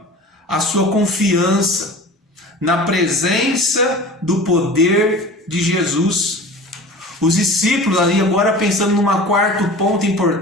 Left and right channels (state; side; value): normal; both; correlation 0.39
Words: a sua confiança na presença do poder de Jesus. Os discípulos, ali agora pensando numa quarto ponto